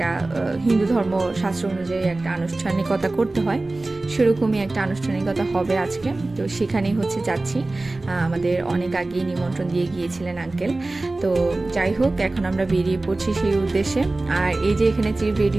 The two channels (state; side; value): quieter; left; 3.0 dB